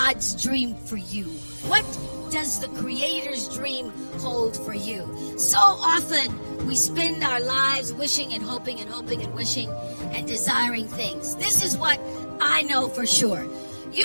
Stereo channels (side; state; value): both; inverted; correlation -1.00